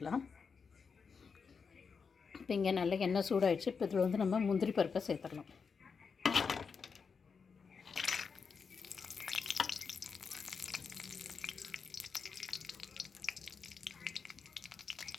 இப்போ இங்கே நல்லா எண்ணெய் சூடாகிடுச்சு. இப்போ இதில் வந்து நம்ம முந்திரி பருப்பை சேர்த்துடலாம்.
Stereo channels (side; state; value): right; quieter; 5.6 dB